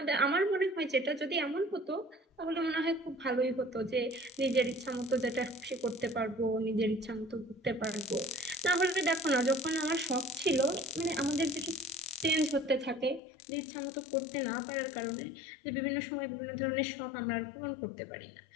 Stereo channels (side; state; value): right; drops out; at 13.2 s